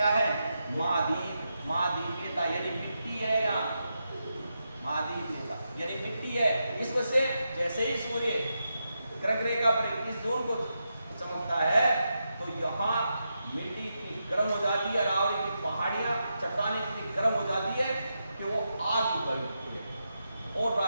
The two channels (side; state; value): both; inverted; correlation -0.86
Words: है? महाद्वीप, महाद्वीपीयता, यानी मिट्टी है यहाँ, महाद्वीपीयता यानी मिट्टी है। इस वजह से जैसे ही सूर्य ग्रह रेखा पर 21 जून को चमकता है तो यहाँ मिट्टी इतनी गर्म हो जाती है, अरावली की पहाड़ियाँ चट्टानें इतनी गर्म हो जाती है कि वो आग उगल उठती है और